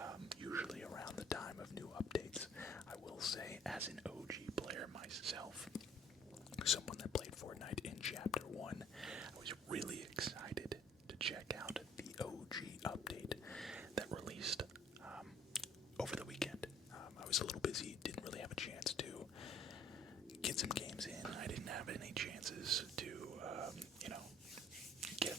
usually around the time of new updates. I will say, as an OG player myself, someone that played Fortnite in Chapter 1, I was really excited to check out the OG update that released over the weekend. I was a little busy, didn't really have a chance to get some games in. I didn't have any chances to, get a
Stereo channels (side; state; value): both; normal; correlation 0.57